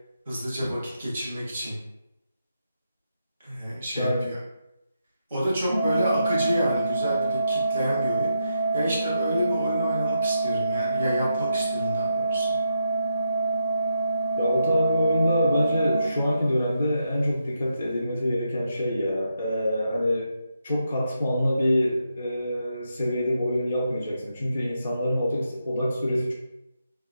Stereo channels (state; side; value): inverted; both; correlation -0.83